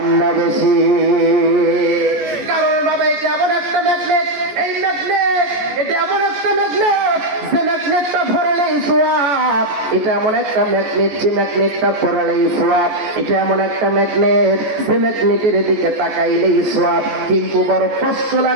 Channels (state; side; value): late; left; 14 ms